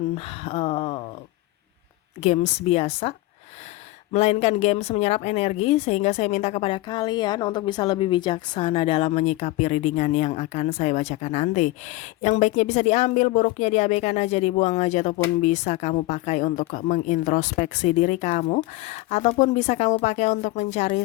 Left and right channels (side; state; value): right; quieter; 19.0 dB